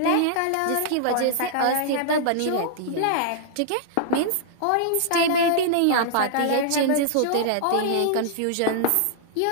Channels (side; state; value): both; different; correlation -0.01